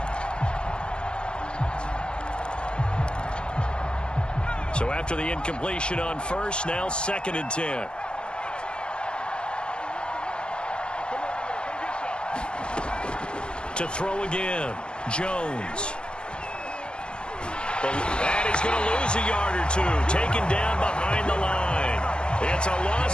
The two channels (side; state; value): right; late; 0.053 ms